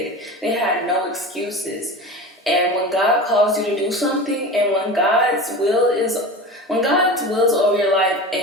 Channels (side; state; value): both; normal; correlation 0.31